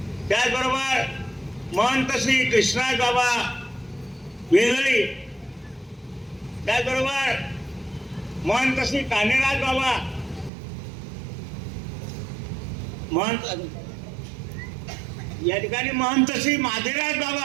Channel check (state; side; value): drops out; left; at 10.5 s